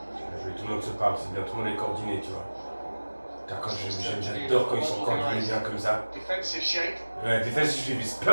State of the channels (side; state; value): both; inverted; correlation -1.00